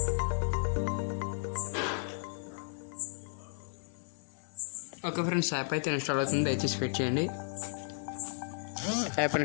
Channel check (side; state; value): right; silent; digital silence